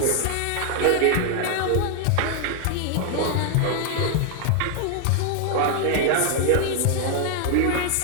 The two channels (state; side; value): different; both; correlation 0.00